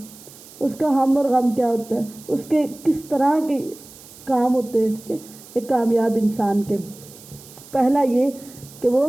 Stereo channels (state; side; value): noise; right; hiss, 20 dB below the sound